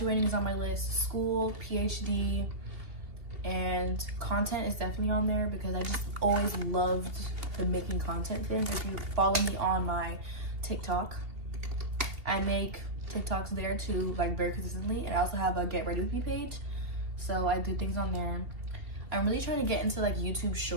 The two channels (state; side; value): late; left; 2.8 ms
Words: is on my list, school, PhD, and content is definitely on there, because I just always loved the making content thing. If you follow me on my TikTok, I make TikToks there too, like very consistently, and I also have a Get Ready With Me page, so I do things on there. I'm really trying to get into like YouTube